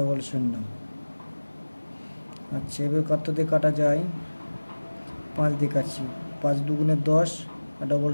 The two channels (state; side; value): inverted; both; correlation -1.00